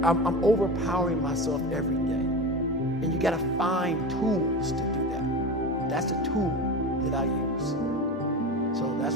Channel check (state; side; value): normal; both; correlation 0.26